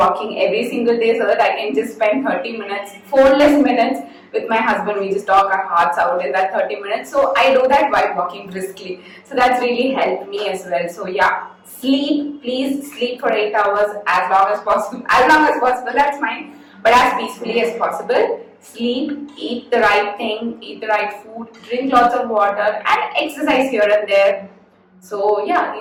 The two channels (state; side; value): identical; both; correlation 1.00